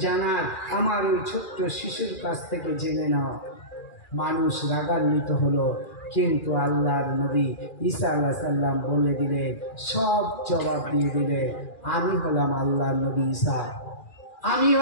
জানার আমার ওই ছোট্ট শিশুর কাছ থেকে জেনে নাও। মানুষ রাগান্বিত হলো, কিন্তু আল্লাহর নবী ঈসা আলাইহিস সালাম বলে দিলেন, সব জবাব দিয়ে দিলেন, আমি হলাম আল্লাহর নবী ঈসা, আমি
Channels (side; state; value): right; late; 2.4 ms